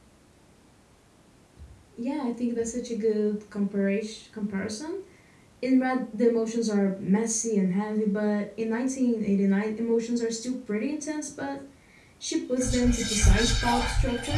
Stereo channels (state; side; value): identical; both; correlation 1.00